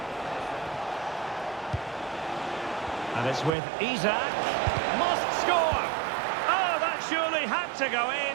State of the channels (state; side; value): drops out; left; at 3.5 s